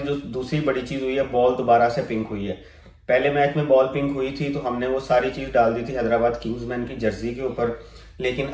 जो दूसरी बड़ी चीज़ हुई है, बॉल दोबारा से पिंक हुई है। पहले मैच में बॉल पिंक हुई थी तो हमने वो सारी चीज़ डाल दी थी हैदराबाद किंग्समैन की जर्सी के ऊपर, लेकिन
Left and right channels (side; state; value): both; identical; correlation 1.00